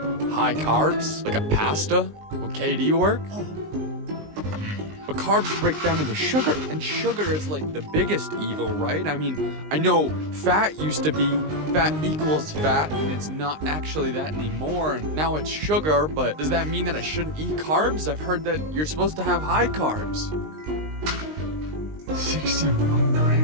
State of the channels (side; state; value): left; late; 19 ms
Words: High carbs? Like a pasta? Will KD work? But carbs break down into sugar, and sugar is like the biggest evil, right? I mean, I know fat used to be fat equals fat, and it's not actually that anymore, and now it's sugar, but does that mean that I shouldn't eat carbs? I've heard that you're supposed to have high carbs. 61